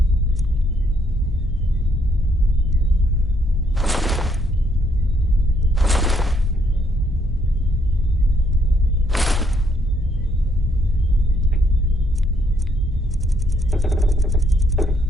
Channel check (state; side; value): normal; both; correlation 0.71